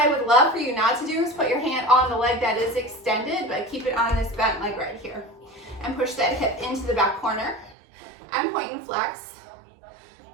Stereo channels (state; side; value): drops out; left; at 7.8 s